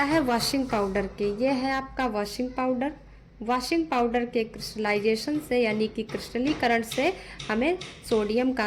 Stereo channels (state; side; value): identical; both; correlation 1.00